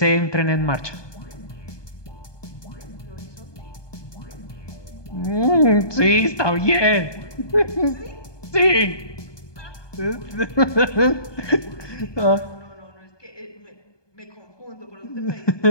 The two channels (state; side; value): late; right; 1.2 ms